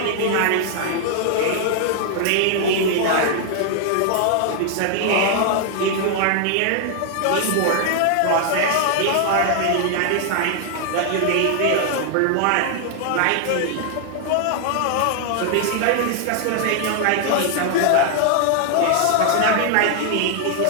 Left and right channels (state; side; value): different; both; correlation 0.00